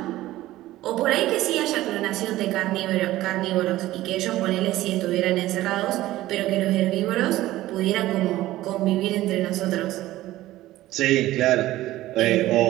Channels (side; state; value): left; quieter; 15.9 dB